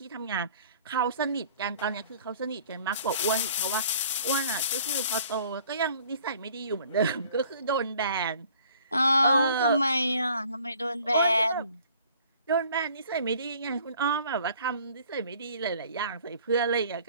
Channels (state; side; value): inverted; both; correlation -0.54